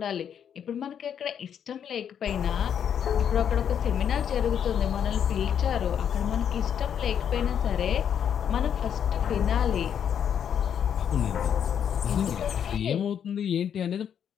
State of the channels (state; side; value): quieter; right; 8.6 dB